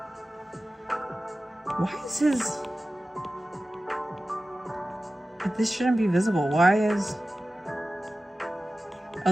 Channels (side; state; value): both; normal; correlation 0.95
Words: Why is his... This shouldn't be visible. Why is...